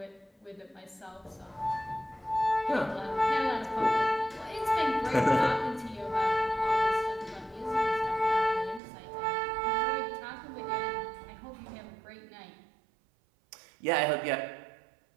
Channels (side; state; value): left; drops out; at 8.8 s